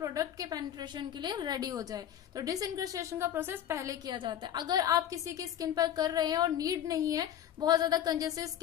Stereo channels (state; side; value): quieter; right; 10.6 dB